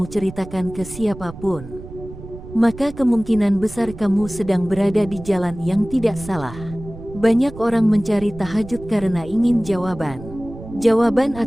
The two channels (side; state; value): right; noise; rumble, 14 dB below the sound